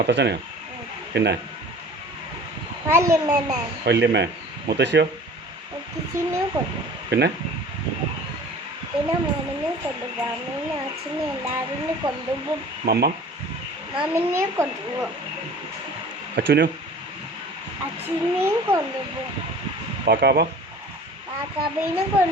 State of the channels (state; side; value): normal; both; correlation 0.43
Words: പിന്നെ വല്യമ്മേ? മുത്തശ്ശിയോ? പിന്നെ മമ്മ അച്ഛനെയോ? പാക്കാപ്പ